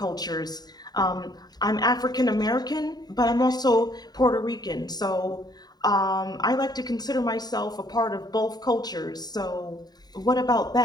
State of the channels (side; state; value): right; late; 0.19 ms